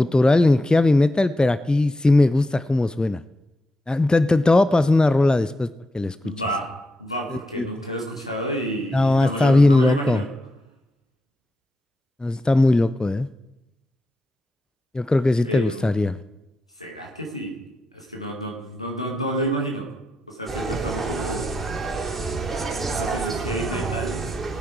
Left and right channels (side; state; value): both; normal; correlation 0.87